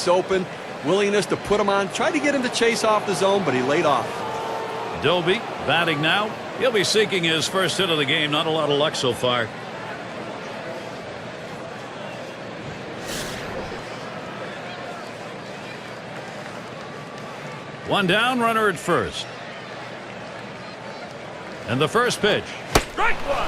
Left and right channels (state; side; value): identical; both; correlation 1.00